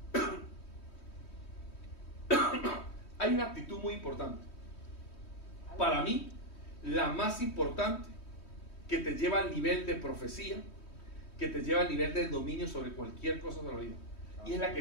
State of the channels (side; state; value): right; late; 3.2 ms